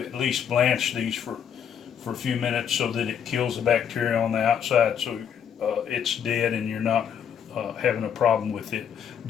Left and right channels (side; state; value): right; quieter; 8.3 dB